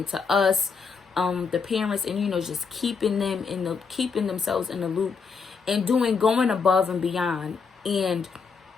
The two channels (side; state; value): right; quieter; 5.4 dB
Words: to us, the parents, and just keeping themselves in the loop, and going above and beyond, and